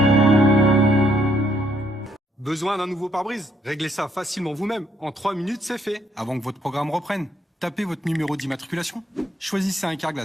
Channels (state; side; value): normal; both; correlation 0.71